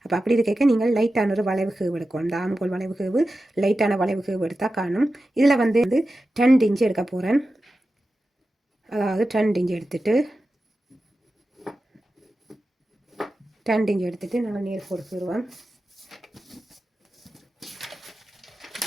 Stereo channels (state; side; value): normal; both; correlation 0.93